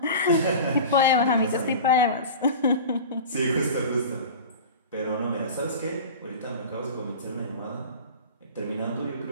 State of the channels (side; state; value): both; inverted; correlation -0.34